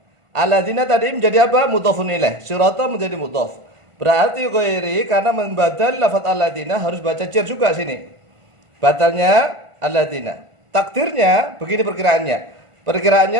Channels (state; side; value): late; left; 1.5 ms